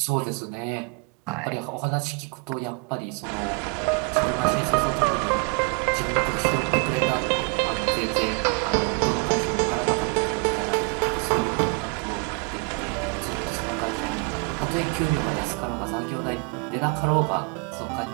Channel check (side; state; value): left; quieter; 32.4 dB